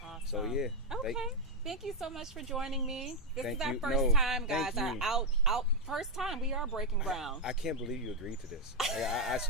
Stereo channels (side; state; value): both; normal; correlation -0.01